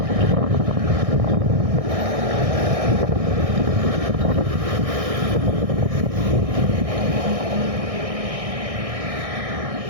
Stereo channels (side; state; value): left; late; 1.6 ms